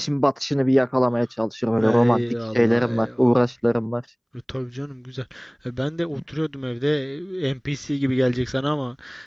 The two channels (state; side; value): identical; both; correlation 1.00